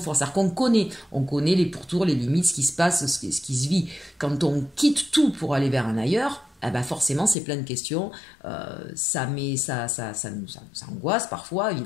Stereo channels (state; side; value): drops out; right; at 7.4 s